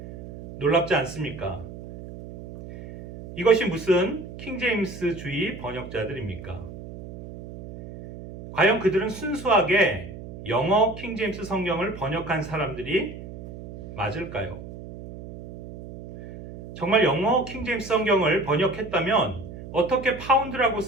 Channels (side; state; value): right; noise; hum, 13 dB below the sound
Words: 놀랍지 않습니까? 이것이 무슨 킹제임스주의 번역자들입니까? 과연 그들은 순수하게 영어 킹제임스 성경을 번역한 사람들이 맞을까요? 정말 영어 킹제임스 성경을 번역했다면 어떻게 파운드라고